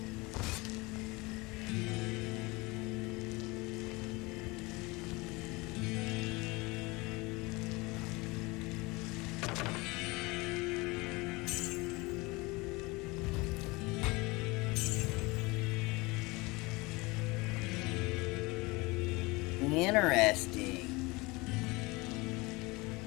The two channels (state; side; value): quieter; right; 24.2 dB